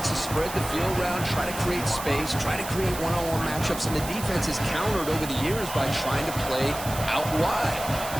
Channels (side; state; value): right; noise; hiss, 10 dB below the sound